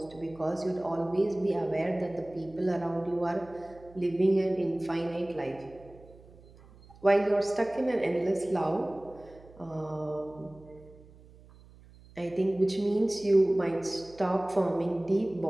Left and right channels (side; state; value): right; noise; hum, 23 dB below the sound